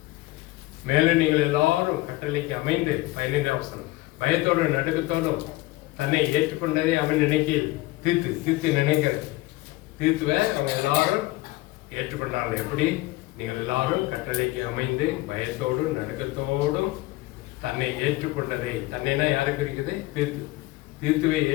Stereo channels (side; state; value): right; quieter; 19.5 dB